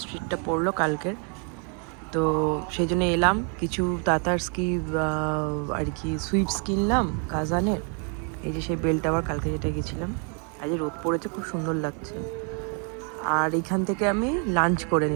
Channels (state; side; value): quieter; left; 39.1 dB